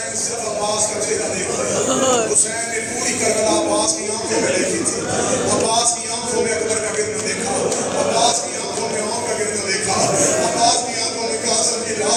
صرف عباس کا چہرہ دیکھتے. حسین نے پوری کربلا عباس کی آنکھوں میں دیکھی تھی. عباس کی آنکھوں میں اکبر کا گرنا دیکھا, عباس کی آنکھوں میں عمر کا گرنا دیکھا, عباس کی آنکھوں میں قاسم کی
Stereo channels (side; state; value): both; identical; correlation 1.00